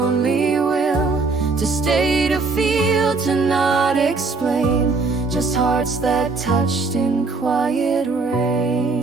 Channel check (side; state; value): left; quieter; 4.0 dB